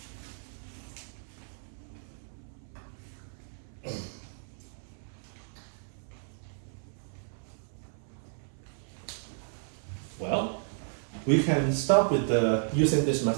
Well, we can start with using this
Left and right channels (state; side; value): silent; left; 56 dB below the other